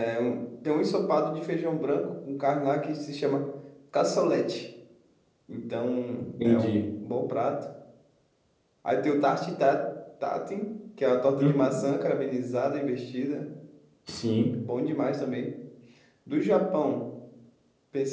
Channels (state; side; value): identical; both; correlation 1.00